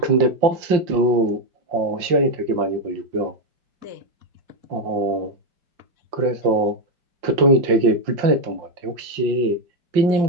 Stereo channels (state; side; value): late; left; 5.7 ms